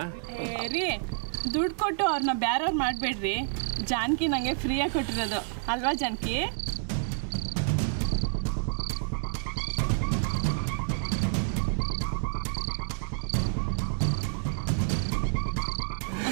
ರೀ ದುಡ್ಡು ಕೊಟ್ಟು ಅವ್ರನ್ನ ಬ್ಯಾರವ್ರು ಮಾಡಬೇಡ್ರಿ. ಜಾನಕಿ ನನಗೆ ಫ್ರೀಯಾಗಿ ಕೊಟ್ಟಿರೋದು ಅಲ್ವಾ ಜಾನಕಿ?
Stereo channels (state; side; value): silent; left; digital silence